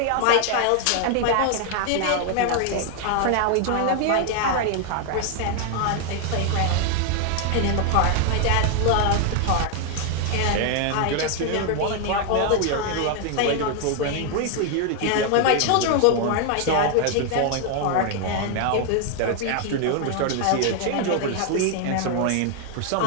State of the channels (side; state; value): both; different; correlation 0.00